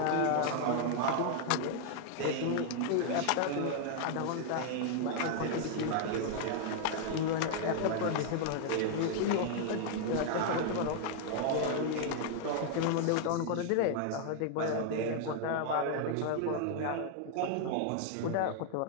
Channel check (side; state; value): both; different; correlation 0.00